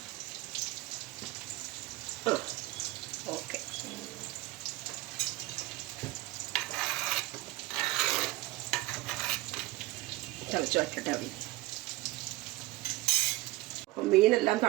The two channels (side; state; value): left; quieter; 19.7 dB